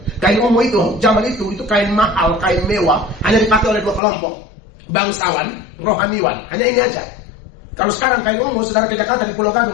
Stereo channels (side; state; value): right; drops out; at 4.0 s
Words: Kain ungu itu, zaman itu kain mahal, kain mewah, hanya dipakai oleh 2 kelompok. Bangsawan, rohaniwan, hanya ini aja. Kalau sekarang kain ungu, saudara ke Jakarta di Pulau